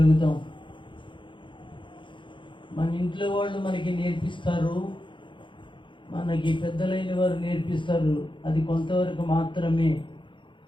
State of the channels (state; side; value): late; right; 0.24 ms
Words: మన ఇంట్లో వాళ్ళు మనకి నేర్పిస్తారు, మనకి పెద్దలైన వారు నేర్పిస్తారు. అది కొంతవరకు మాత్రమే